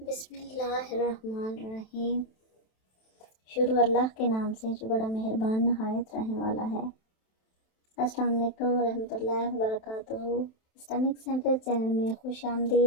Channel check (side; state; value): right; late; 27 ms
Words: اللہ الرحمن الرحیم۔ شروع اللہ کے نام سے جو بڑا مہربان نہایت رحم والا ہے۔ السلام علیکم ورحمۃ اللہ وبرکاتہ۔ اسلامک سینٹر چینل میں خوش